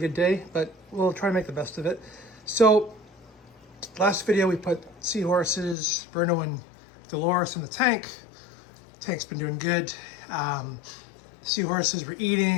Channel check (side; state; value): right; drops out; at 5.8 s